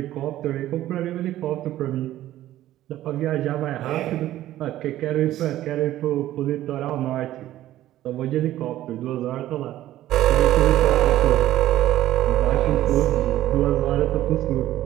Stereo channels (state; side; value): quieter; left; 14.0 dB